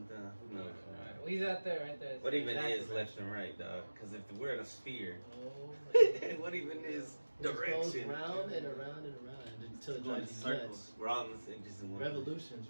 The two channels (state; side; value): inverted; both; correlation -1.00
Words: Who knows? Right. Well, he's out there, right there. What even is left and right, dog? Because if we're in a sphere, what even is direction? It goes round and around and around until it drives circles. We're all in the same, just in one. Revolutions,